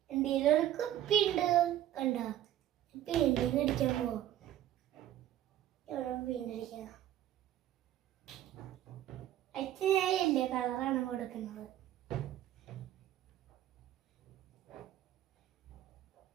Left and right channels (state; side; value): quieter; left; 12.6 dB